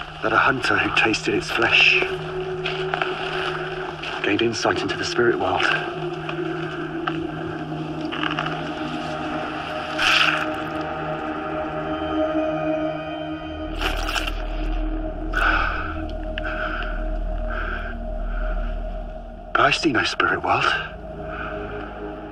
That a hunter who tasted its flesh gained insight into the spirit world. But I see no spirit world.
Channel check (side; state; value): both; identical; correlation 1.00